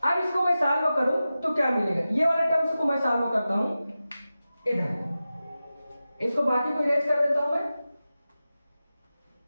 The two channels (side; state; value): both; inverted; correlation -0.94